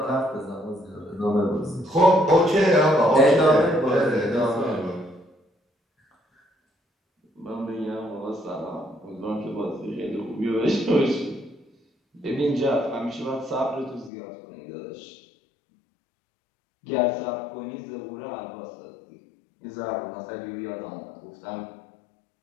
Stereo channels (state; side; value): drops out; right; at 14.1 s